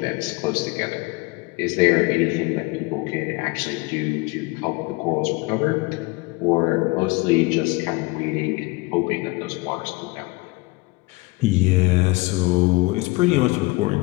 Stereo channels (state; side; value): quieter; right; 23.9 dB